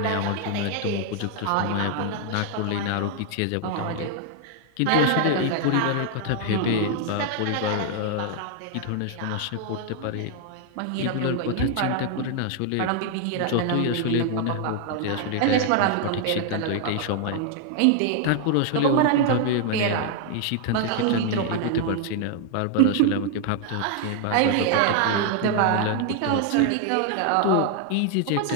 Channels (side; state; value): both; different; correlation 0.00